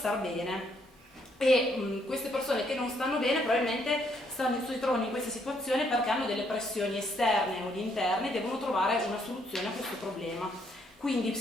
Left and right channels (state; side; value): normal; both; correlation 0.71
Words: bene, e queste persone che non stanno bene probabilmente si trovano in questa situazione perché hanno delle pressioni esterne o interne e devono trovare una soluzione a questo problema. Quindi